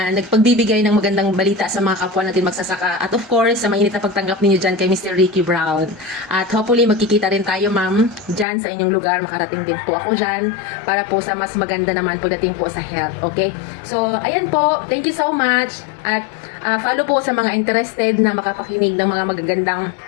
nagpagbibigay ng magandang balita sa mga kapwa natin magsasaka. At of course, sa mainit na pagtanggap ninyo dyan kay Mr. Ricky Brown. At hopefully, magkikita rin tayo, ma'am, dyan sa inyong lugar. Makarating din po ako dyan para po sa mas maganda naman pagdating po sa health. Okay? So, ayan po. Thank you so much. At follow po sa mga interested na makapakinig ng mga magagandang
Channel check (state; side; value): drops out; right; at 8.5 s